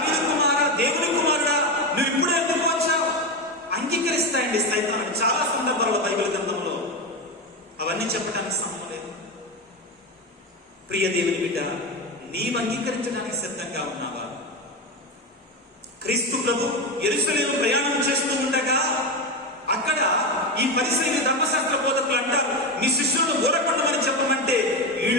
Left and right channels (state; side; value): normal; both; correlation 0.16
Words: కుమారా, దేవుని కుమారుడా, నువ్వు ఇప్పుడే ఎందుకు వచ్చావు? అంగీకరిస్తాయండి సైతాను చాలా సందర్భాల్లో బైబిల్ గ్రంథంలో. అవన్నీ చెప్పడానికి సమయం లేదు. ప్రియ దేవుని బిడ్డ, నీవు అంగీకరించడానికి సిద్ధంగా ఉన్నావా? క్రీస్తు ప్రభు యెరూషలేము ప్రయాణం చేస్తూ ఉండగా అక్కడ ఈ పరిసయ్యులు ధర్మశాస్త్ర బోధకులు అంటారు, మీ శిష్యులను ఊరకుండమని చెప్పమంటే